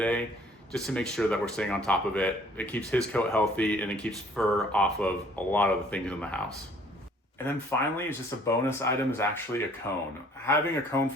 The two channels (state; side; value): normal; both; correlation 0.57